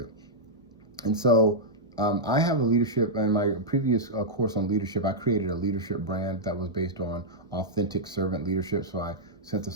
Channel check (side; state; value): both; normal; correlation -0.08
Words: And so I have a leadership, in my previous course on leadership, I created a leadership brand that was based on authentic servant leadership. So I